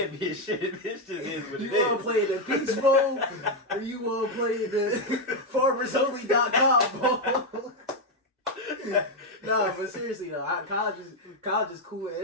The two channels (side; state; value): both; normal; correlation 0.04